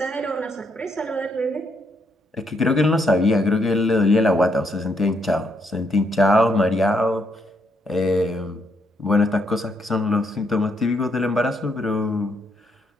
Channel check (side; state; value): both; normal; correlation 0.75